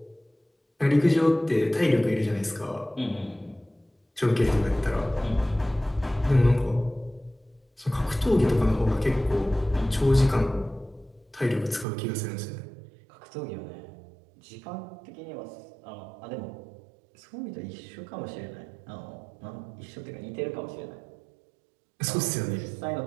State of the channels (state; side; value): drops out; left; at 11.9 s